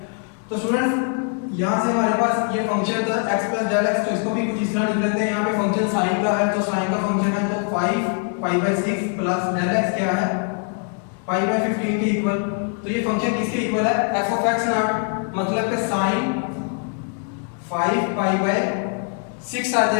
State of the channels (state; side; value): quieter; right; 38.8 dB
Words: तो स्टूडेंट्स यहाँ से हमारे पास ये फंक्शन था x प्लस डेल x, तो इसको भी कुछ इस तरह लिख लेते हैं। यहाँ पे फंक्शन साइन का है तो साइन का फंक्शन है तो 5 पाई बाय 6 प्लस डेल x क्या है पाई बाय 15 के इक्वल। तो ये फंक्शन किसके इक्वल है f ऑफ x नॉट, मतलब कि साइन 5 पाई बाय 6 आ